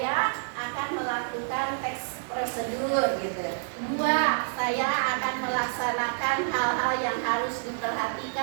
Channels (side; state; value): left; silent; digital silence